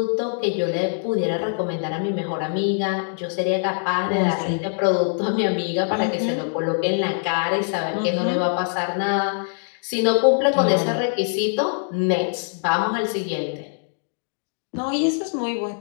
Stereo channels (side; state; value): right; silent; 60 dB below the other